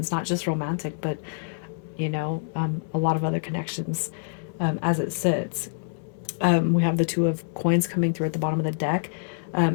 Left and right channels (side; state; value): right; silent; digital silence